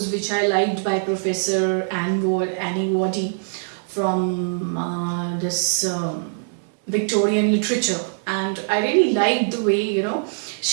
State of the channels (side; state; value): left; silent; digital silence